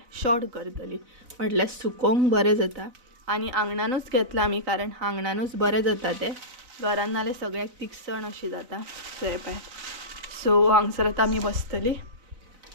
शॉर्ट करतली, म्हटल्यार सुकोवंक बरें जाता आनी आंगणानूच घेतला आमी, कारण आंगणानूच बरें जाता ते, घरान नाल्यार सगळ्याक तिखसण अशी जाता। सो हे पळयात, सो हांगसर आतां आमी बसतली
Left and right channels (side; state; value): left; late; 4.0 ms